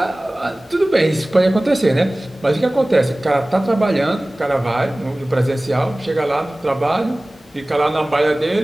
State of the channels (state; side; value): normal; both; correlation 0.98